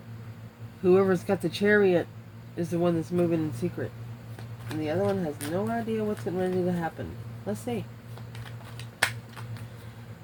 Whoever's got the Chariot is the one that's moving in secret. And the other one has no idea what's getting ready to happen. Let's see.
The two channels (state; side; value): identical; both; correlation 1.00